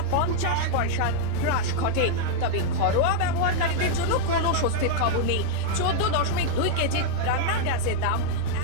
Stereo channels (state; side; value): different; both; correlation -0.01